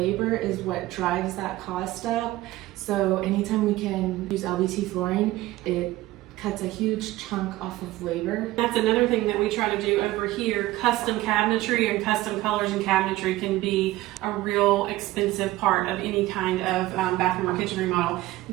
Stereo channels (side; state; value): left; quieter; 17.0 dB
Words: is what drives that cost up. So anytime we can use LVT flooring, it cuts a huge chunk off of labor. That's another thing that we try to do over here. Custom cabinetry and custom colors and cabinetry can be a real expensive part of any kind of bathroom or kitchen remodel.